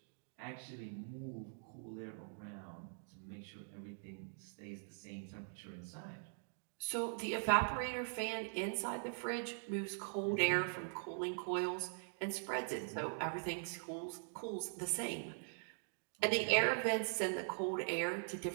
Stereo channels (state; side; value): silent; left; digital silence